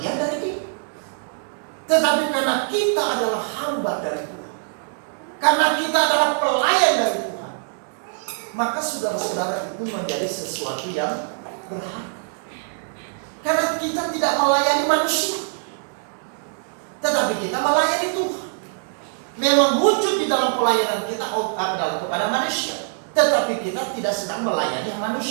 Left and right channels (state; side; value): silent; left; digital silence